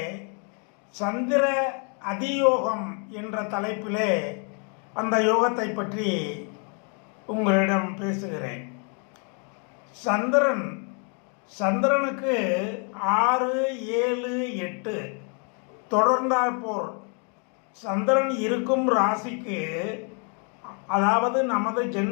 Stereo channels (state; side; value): quieter; right; 38.6 dB